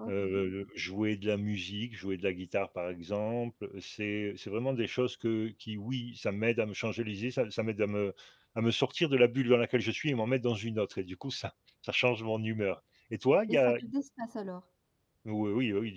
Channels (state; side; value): identical; both; correlation 1.00